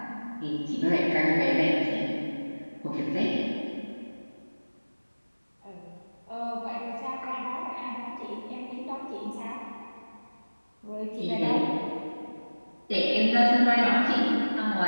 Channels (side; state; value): both; inverted; correlation -1.00